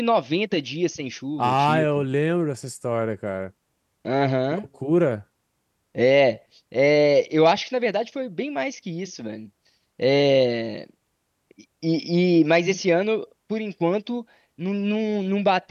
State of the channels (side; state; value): both; identical; correlation 1.00